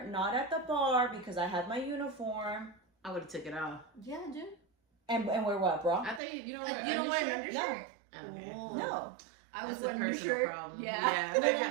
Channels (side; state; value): left; drops out; at 6.2 s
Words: not at the bar because I have my uniform. I would have took it off. Yeah, dude. And wear what, bro? I thought you don't wear an undershirt? No. Okay. No. I was a personal problem. Yeah. I thought you had